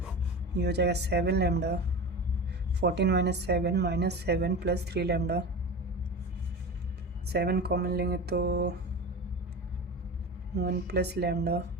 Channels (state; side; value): normal; both; correlation 0.29